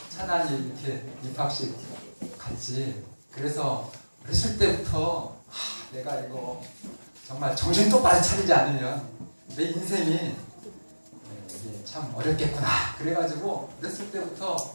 차난이 이렇게 입학식 같이. 그래서 어렸을 때부터 내가 이거 정말 정신 똑바로 차리지 않으면 내 인생이 이게 참 어렵겠구나. 그래가지고 어렸을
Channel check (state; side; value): inverted; both; correlation -1.00